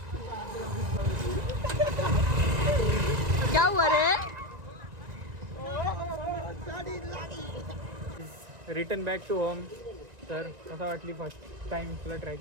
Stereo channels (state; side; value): late; left; 1.9 ms